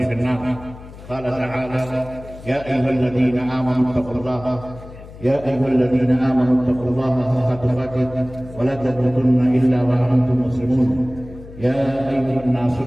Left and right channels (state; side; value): noise; left; hum, 17 dB below the sound